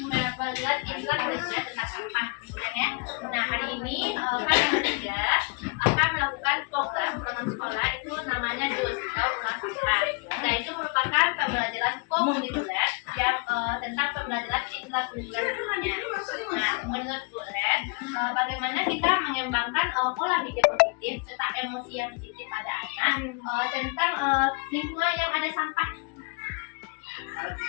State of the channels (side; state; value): right; quieter; 33.9 dB